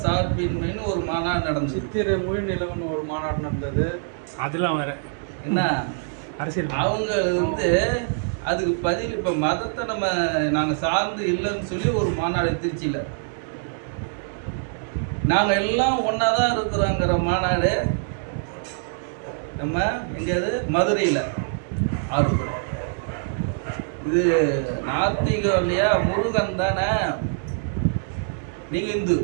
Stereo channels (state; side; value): silent; left; 62 dB below the other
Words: சார்பின்மைன்னு ஒரு மாநாடு நடந்தது. சித்திரை மொழி நிலவன் ஒரு மாநாடு நடந்தது. அதெல்லாம் வேற என்ன அரசியல். அவங்க வந்து அதுக்கு பதில் இப்போ மதத்தை நாங்கள் சார்ந்து இல்லைன்னு சொல்லி ஒரு மாநாடு திருச்சியில் நாங்கள் எல்லாம் ஒன்றா தான் இருக்கிறோங்கிற மாநாடு நம்ம எங்கேயாவது மதுரையில் ஆர்வப்படுறோம். இது நாத்திகம் இல்லையா? முருகன் தானே. நீங்கள் இந்து,